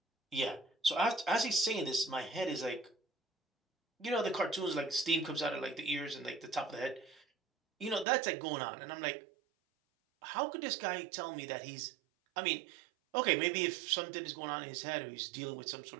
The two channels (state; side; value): drops out; left; at 8.1 s